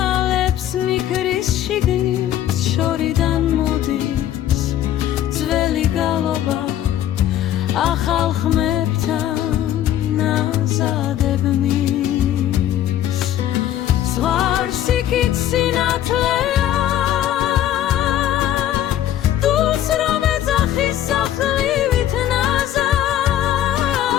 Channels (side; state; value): right; quieter; 11.9 dB